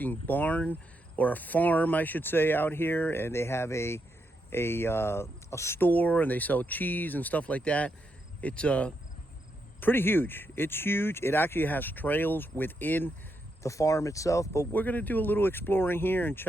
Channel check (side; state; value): both; normal; correlation 0.81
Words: barn, or a farm I should say, out here, and they have a store, and they sell cheese and stuff like that. It's pretty huge. It's huge. It actually has trails within the farm itself, but we're gonna do a little exploring here and